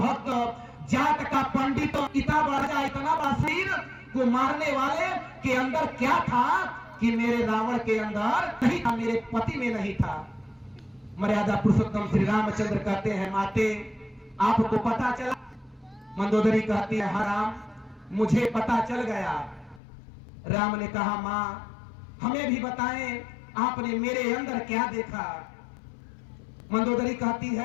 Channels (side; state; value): right; drops out; at 19.8 s